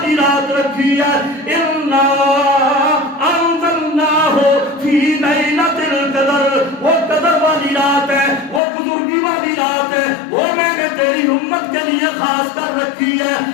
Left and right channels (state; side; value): drops out; right; at 8.6 s